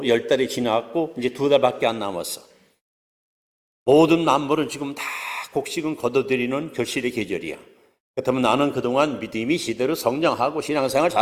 10달이 지나갔고 이제 2달밖에 안 남았어. 모든 만물은 지금 다 곡식은 거둬들이는 결실의 계절이야. 그렇다면 나는 그동안 믿음이 제대로 성장하고 신앙생활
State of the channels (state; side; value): identical; both; correlation 1.00